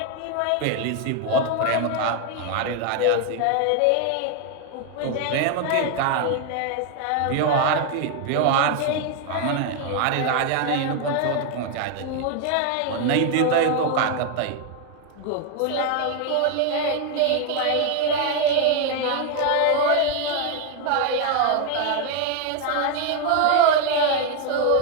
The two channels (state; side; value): different; both; correlation 0.01